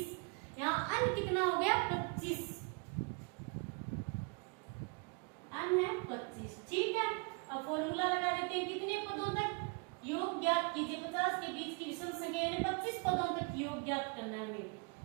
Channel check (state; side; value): quieter; left; 34.1 dB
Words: यहाँ n कितना हो गया 25, n है 25। ठीक है, अब फॉर्मूला लगा देते हैं, कितने पदों तक योग ज्ञात कीजिए, 50 के बीच की विषम संख्या यानी 25 पदों तक योग ज्ञात करना है हमें।